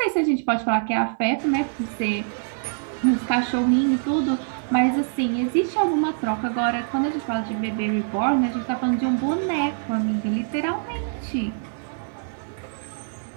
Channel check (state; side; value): silent; left; digital silence